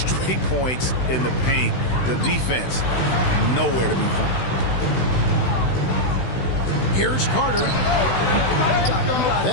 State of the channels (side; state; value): right; late; 16 ms